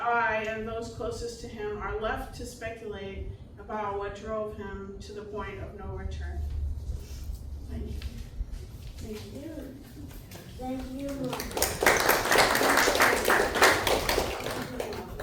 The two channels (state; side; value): identical; both; correlation 1.00